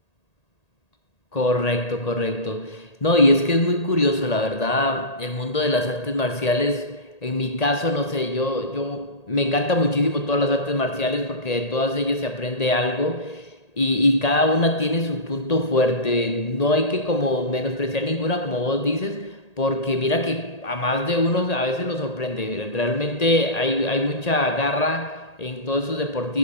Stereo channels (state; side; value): late; right; 1.8 ms